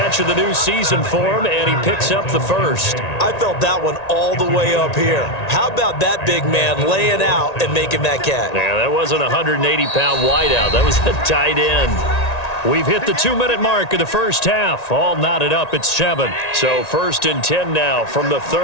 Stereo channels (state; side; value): late; right; 1.9 ms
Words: of the new season for him, and he picks up the first. I felt that one all the way up here. How about that big man laying out and making that catch? Yeah, that wasn't a 180-pound wideout. That was a tight end. We've hit the 2-minute mark of the first half. All knotted up at 7. So 1st and 10 now from the